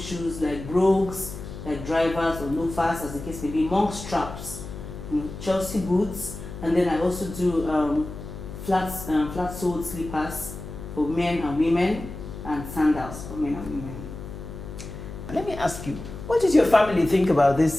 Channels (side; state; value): left; noise; hum, 11 dB below the sound